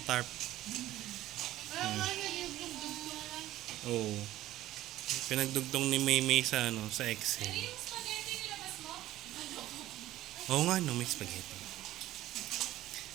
tarp. Oh. Pinagdugtong ni Maymay sa sa Excel. Yung spaghetti nilabas mo? Oo nga no, may spaghetti.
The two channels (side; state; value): left; quieter; 14.9 dB